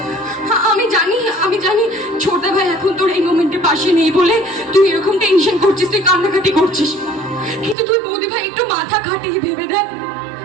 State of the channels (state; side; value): drops out; left; at 7.8 s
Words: আমি জানি ছোট ভাই এখন তোর এই মোমেন্টে পাশে নেই বলে তুই এরকম টেনশন করছিস, তুই কান্নাকাটি করছিস, কিন্তু তুই বৌদি ভাই একটু মাথা খাটিয়ে ভেবে দেখ,